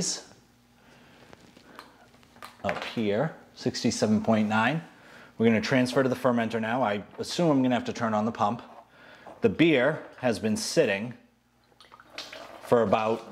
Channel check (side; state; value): both; identical; correlation 1.00